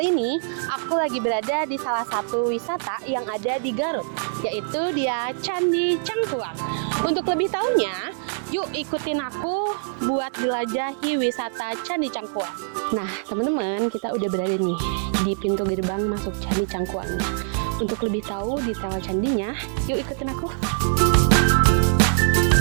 ini aku lagi berada di salah satu wisata yang ada di Garut, yaitu dia Candi Cangkuang. Untuk lebih tahunya, yuk ikutin aku buat jelajahi wisata Candi Cangkuang. Nah teman-teman, kita udah berada nih di pintu gerbang masuk Candi Cangkuangnya. Untuk lebih tahu detail candinya, yuk ikutin aku.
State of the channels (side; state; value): left; silent; digital silence